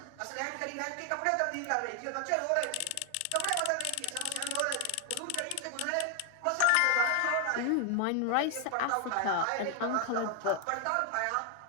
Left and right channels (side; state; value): both; different; correlation 0.00